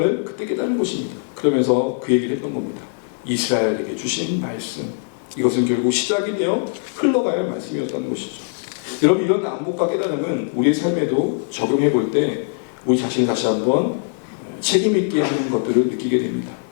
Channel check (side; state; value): right; silent; digital silence